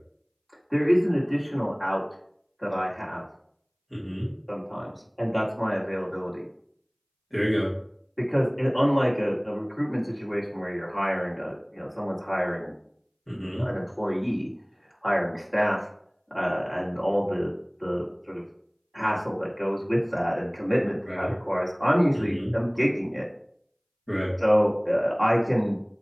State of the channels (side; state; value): both; identical; correlation 1.00